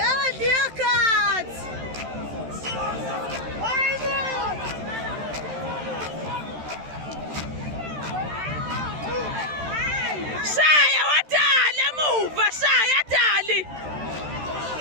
Shaya wadali emuva, shaya dali.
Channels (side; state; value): left; late; 13 ms